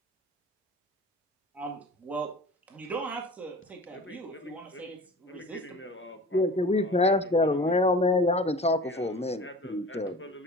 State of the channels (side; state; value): both; normal; correlation 0.40